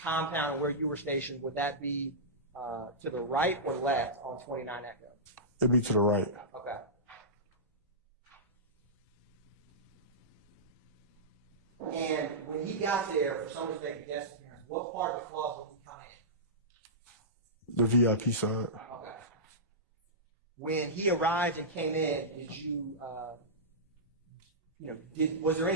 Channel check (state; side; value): normal; both; correlation -0.15